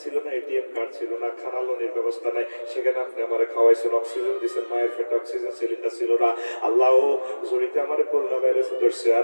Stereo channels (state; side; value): inverted; both; correlation -1.00